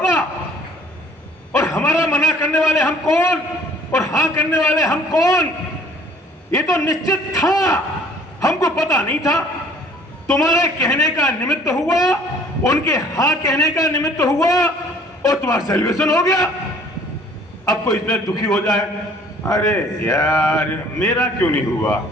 और हमारा मना करने वाले हम कौन और हाँ करने वाले हम कौन, ये तो निश्चित था, हमको पता नहीं था। तुम्हारे कहने का निमित्त हुआ, उनके हाँ कहने का निमित्त हुआ और तुम्हारा सेलिब्रेशन हो गया। अब कोई इसमें दुखी हो जाए, अरे यार मेरा क्यों नहीं हुआ,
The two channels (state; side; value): normal; both; correlation 0.56